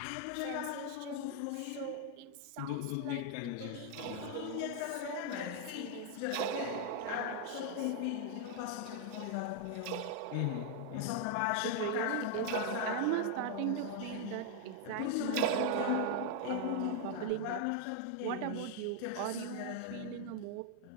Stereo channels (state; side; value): different; both; correlation 0.00